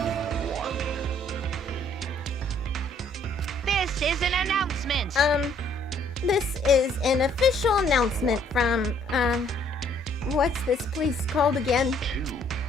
happens? This is an official announcement from, what's this place called again?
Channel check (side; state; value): both; normal; correlation 0.63